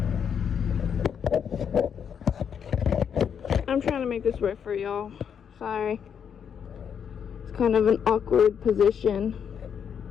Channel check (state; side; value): quieter; right; 7.7 dB